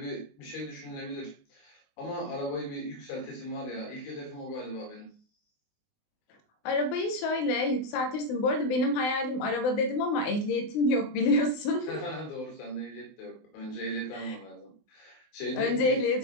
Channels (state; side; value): late; right; 19 ms